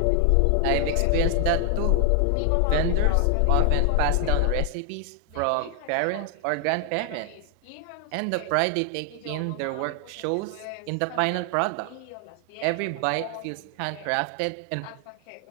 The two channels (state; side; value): different; both; correlation 0.00